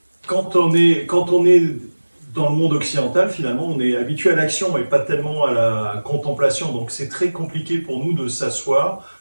quand on est dans le monde occidental, finalement, on est habitué à l'action et pas tellement à la contemplation. Donc c'est très compliqué pour nous de s'asseoir,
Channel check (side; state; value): both; inverted; correlation -1.00